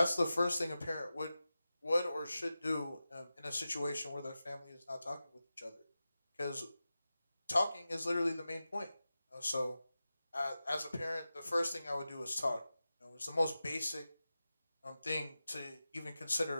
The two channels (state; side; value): inverted; both; correlation -0.94